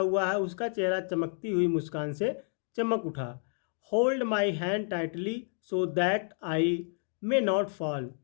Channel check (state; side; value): silent; right; 58 dB below the other